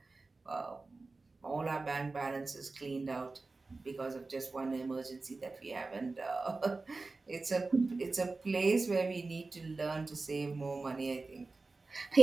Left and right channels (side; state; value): left; quieter; 3.6 dB